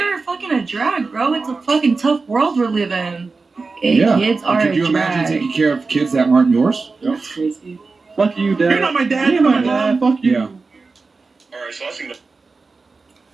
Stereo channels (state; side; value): quieter; left; 4.1 dB